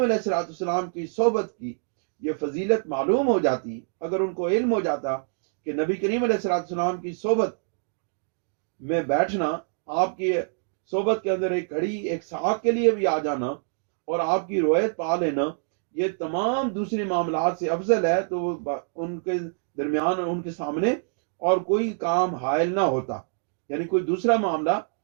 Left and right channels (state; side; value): silent; left; digital silence